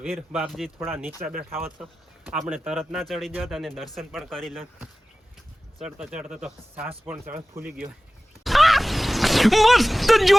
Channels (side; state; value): both; normal; correlation 0.97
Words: વીર બાપજી થોડા નીચે બેઠા હોત તો આપણે તરત ના ચડી જત અને દર્શન પણ કરી લે. ચડતા ચડતા તો સાસ પણ ફૂલી ગયો. मस्त